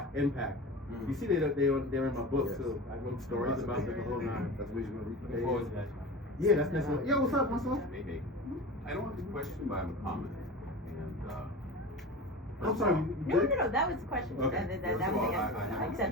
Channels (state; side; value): normal; both; correlation 0.31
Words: impact. You see, they're in my book, so I wrote stories about them the whole 9. That's what you're going to Look forward to that. Yeah, that's necessary. Yo, what's up, Marcel? Hey. I don't have a question, but I have a comment. And I'm sorry. No, that was the question. Okay. That was the answer. I accept